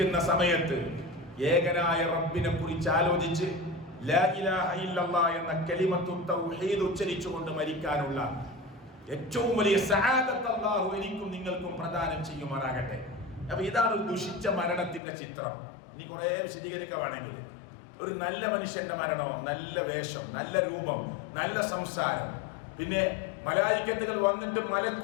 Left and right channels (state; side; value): drops out; right; at 15.0 s